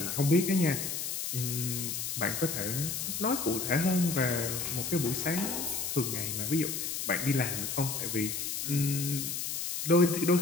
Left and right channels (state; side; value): noise; left; hiss, 3 dB below the sound